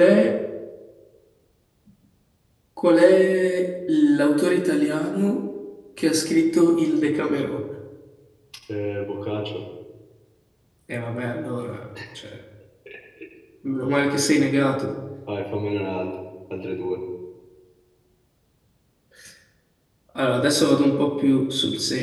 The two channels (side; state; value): both; identical; correlation 1.00